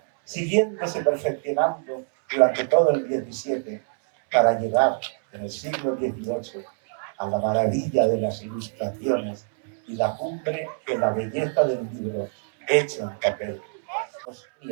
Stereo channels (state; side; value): silent; left; 62 dB below the other